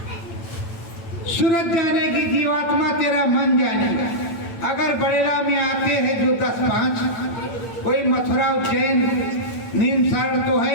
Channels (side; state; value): right; late; 8.9 ms